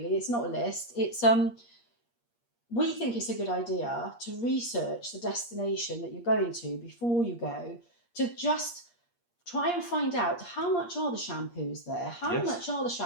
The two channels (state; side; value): late; right; 8.5 ms